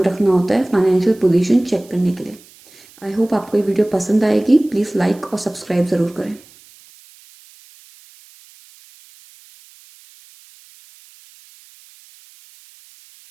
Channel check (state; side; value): noise; right; hiss, 26 dB below the sound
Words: रखना होता है फाइनेंशियल पोजीशन चेक करने के लिए। आई होप आपको ये वीडियो पसंद आएगी। प्लीज़ लाइक और सब्सक्राइब ज़रूर करें।